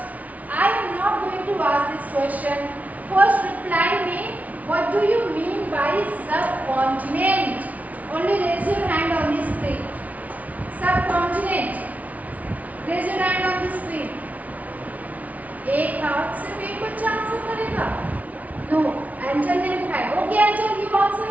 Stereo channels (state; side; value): late; left; 0.071 ms